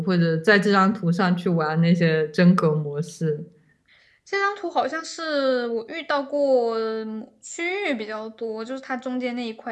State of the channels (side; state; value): both; identical; correlation 1.00